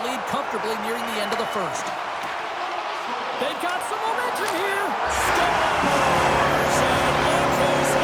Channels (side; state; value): both; identical; correlation 1.00